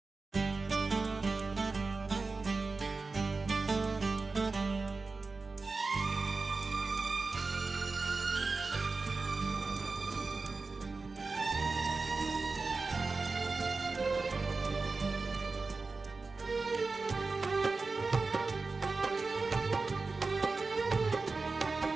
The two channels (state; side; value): quieter; left; 3.9 dB